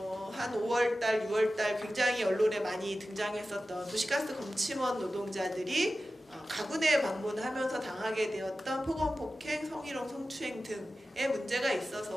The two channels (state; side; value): normal; both; correlation 0.94